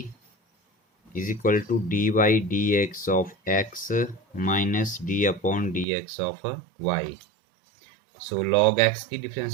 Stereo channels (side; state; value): left; drops out; at 5.9 s